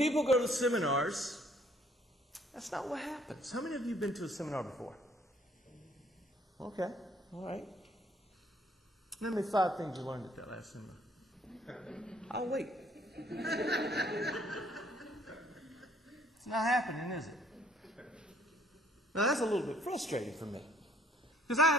go to seminars, that's not what happens. How many of you have been to a seminar before? Okay, all right. Name me 5 things you learned at that last seminar. I'll wait. It's not happening, is it? Now, that's a little bit frustrating for me. Because I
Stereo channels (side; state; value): both; normal; correlation 0.62